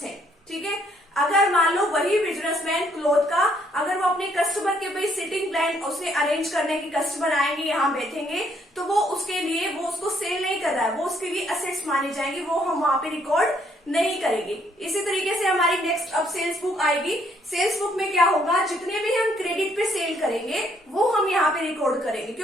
है। ठीक है, अगर मान लो वही बिजनेसमैन क्लॉथ का अगर वो अपने कस्टमर के भाई सिटिंग प्लान उसे अरेंज करने की, कस्टमर आएंगे यहाँ बैठेंगे, तो वो उसके लिए वो उसको सेल नहीं कर रहा है, वो उसके लिए असेट्स माने जाएंगे, वो हम वहां पे रिकॉर्ड नहीं करेंगे। इसी तरीके से हमारी नेक्स्ट अब सेल्स बुक आएगी। सेल्स बुक में क्या होगा, जितने भी हम क्रेडिट पे सेल करेंगे वो हम यहाँ पे रिकॉर्ड करेंगे,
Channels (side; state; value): both; normal; correlation 0.68